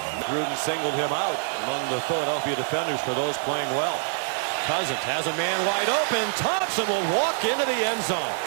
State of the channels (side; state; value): left; silent; digital silence